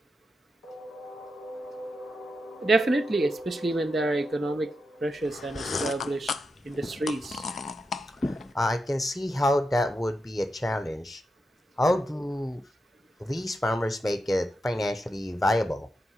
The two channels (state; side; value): normal; both; correlation 0.87